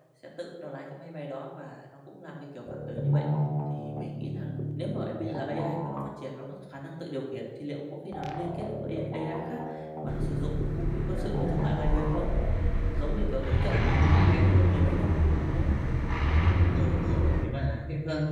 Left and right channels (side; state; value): both; identical; correlation 1.00